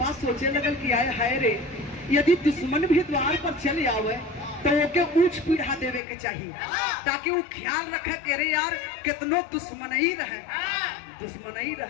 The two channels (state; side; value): drops out; right; at 6.0 s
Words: सोचे लगल कि आए हाय रे यदि दुश्मन भी द्वार पर चले आवे तो ओके ऊंच पीढ़ा देवे के चाहिए ताकि वो ख्याल रखे कि अरे यार कितनो दुश्मन ही रहे दुश्मनी